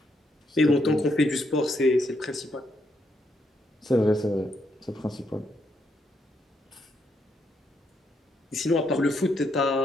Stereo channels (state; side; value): normal; both; correlation 0.77